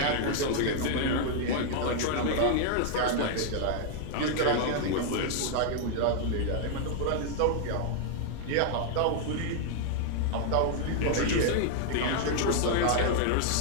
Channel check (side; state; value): both; different; correlation 0.00